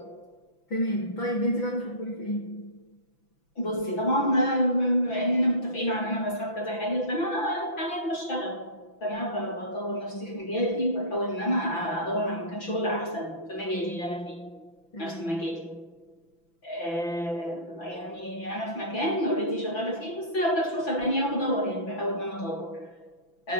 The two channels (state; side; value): late; right; 6.0 ms